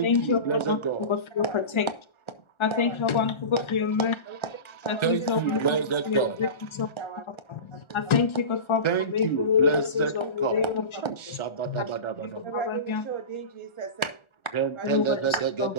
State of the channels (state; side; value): late; right; 1.3 ms